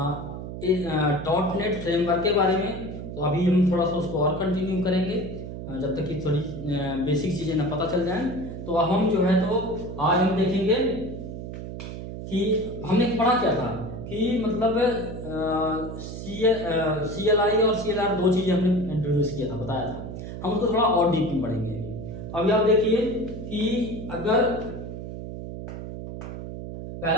डॉट नेट फ्रेमवर्क के बारे में, तो अभी हम थोड़ा सा उसको और कंटिन्यू करेंगे जब तक कि थोड़ी बेसिक चीज़ें ना पता चल जाएं। तो अब हम जो है तो आज हम देखेंगे कि हमने पढ़ा क्या था कि मतलब CLI और CLR दो चीज़ें हमने इंट्रोड्यूस किया था, बताया था। हम उसको थोड़ा और डीप में पढ़ेंगे। तो अभी आप देखिए कि अगर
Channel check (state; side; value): noise; right; hum, 8 dB below the sound